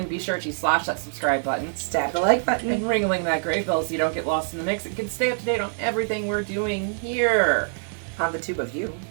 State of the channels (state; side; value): silent; left; digital silence